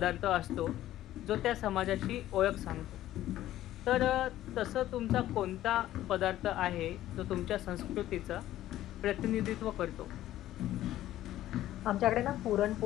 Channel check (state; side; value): quieter; right; 13.8 dB